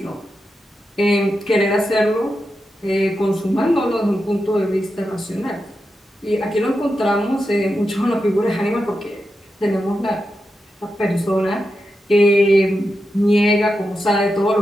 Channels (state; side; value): normal; both; correlation 0.89